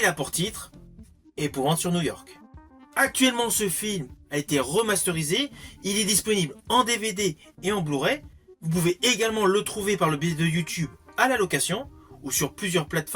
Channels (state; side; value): identical; both; correlation 1.00